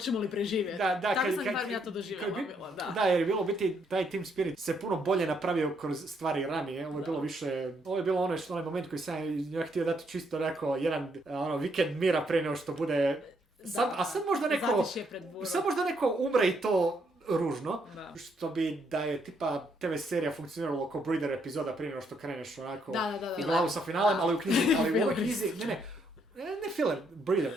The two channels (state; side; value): normal; both; correlation 0.73